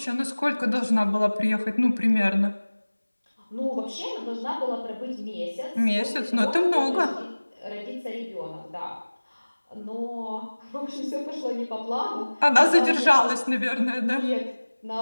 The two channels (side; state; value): both; inverted; correlation -1.00